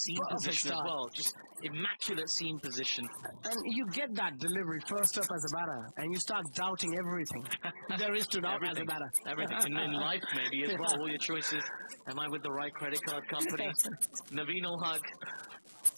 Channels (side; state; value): both; inverted; correlation -1.00